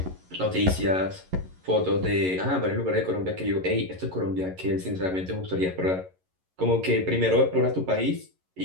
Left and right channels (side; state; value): left; late; 11 ms